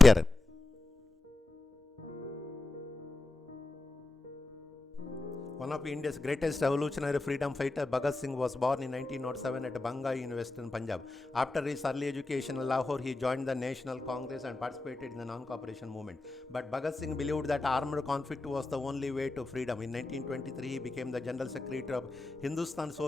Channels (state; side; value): quieter; right; 3.1 dB